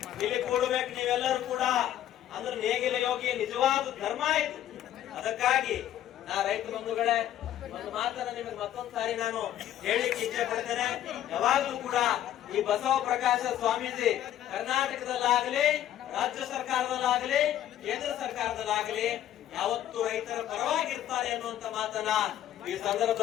ನೀವೆಲ್ಲರೂ ಕೂಡ. ಅಂದ್ರೆ ನೇಗಿಲ ಯೋಗಿ ನಿಜವಾದ ಧರ್ಮ ಇದು. ಅದಕ್ಕಾಗಿ ನಾ ರೈತ ಬಂಧುಗಳೇ ಒಂದು ಮಾತನ್ನ ನಿಮಗೆ ಮತ್ತೊಂದು ಸಾರಿ ನಾನು ಹೇಳಿಕ್ಕೆ ಇಚ್ಛೆ ಪಡ್ತೇನೆ. ಯಾವಾಗ್ಲೂ ಕೂಡ ಈ ಬಸವ ಪ್ರಕಾಶ ಸ್ವಾಮೀಜಿ ಕರ್ನಾಟಕದಲ್ಲಾಗಲಿ, ರಾಜ್ಯ ಸರ್ಕಾರದಲ್ಲಾಗಲಿ, ಕೇಂದ್ರ ಸರ್ಕಾರದಲ್ಲಾಗಲಿ ಯಾವತ್ತು ರೈತರ ಪರವಾಗಿರ್ತಾರೆ ಅನ್ನುವಂತ ಮಾತನ್ನ ಈ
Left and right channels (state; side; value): quieter; right; 11.9 dB